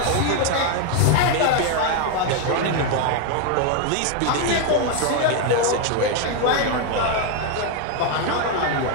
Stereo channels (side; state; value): both; different; correlation 0.01